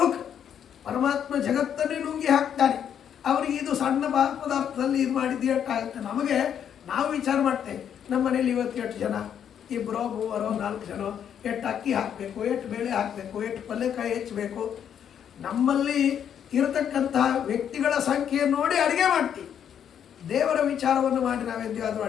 ಪರಮಾತ್ಮ ಜಗತ್ತನ್ನೇ ನುಂಗಿ ಹಾಕ್ತಾನೆ. ಅವರಿಗೆ ಇದು ಸಣ್ಣ ಪದಾರ್ಥದಲ್ಲಿ ಇದು ಮಾಡಿದ್ದು ಎಷ್ಟಾಗುತ್ತೆ. ನಮಗೆ ನಾವು ವಿಚಾರ ಮಾಡ್ತೇವೆ, ನಮ್ಮ ಮನೇಲಿ ಇವತ್ತು ಎಷ್ಟು ಜನ, ಇಬ್ಬರೋ ಮೂವರೋ ನಾಲ್ಕು ಜನ, ಎಷ್ಟು ಅಕ್ಕಿ ಹಾಕಬೇಕು, ಎಷ್ಟು ಬೇಳೆ ಹಾಕಬೇಕು, ಎಷ್ಟು ಪಲ್ಯಕಾಯಿ ಹೆಚ್ಚಬೇಕು. ನಮ್ಮಲ್ಲಿ ಇರತಕ್ಕಂತಹ ವ್ಯಕ್ತಿಗಳ ಸಂಖ್ಯೆ ನೋಡಿ ಅಡುಗೆ ಮಾಡ್ತೀವಿ. ದೇವರ ವಿಚಾರವನ್ನು ಮಾಡಿ ನಾವೆಂದಾದರೂ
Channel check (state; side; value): quieter; right; 8.8 dB